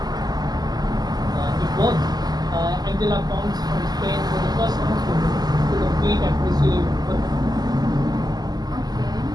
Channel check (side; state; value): left; late; 0.20 ms